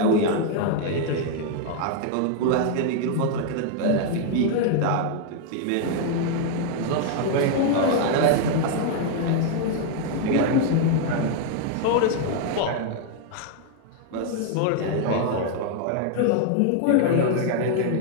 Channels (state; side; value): different; both; correlation 0.00